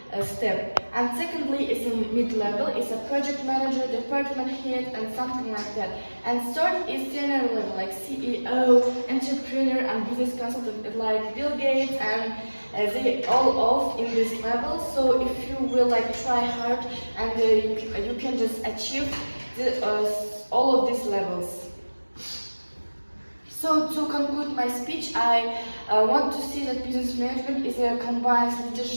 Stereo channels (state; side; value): inverted; both; correlation -1.00